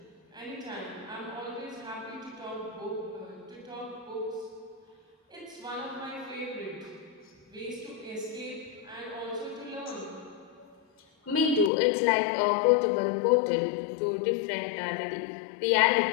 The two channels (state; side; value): drops out; right; at 11.7 s